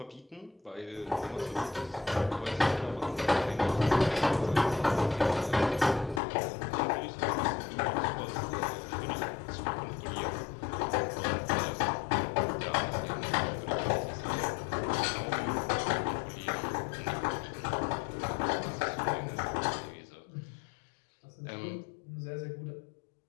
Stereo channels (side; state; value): right; drops out; at 6.2 s